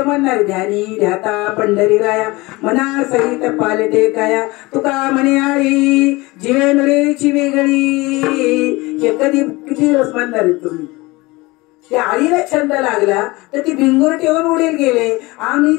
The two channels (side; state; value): right; quieter; 22.5 dB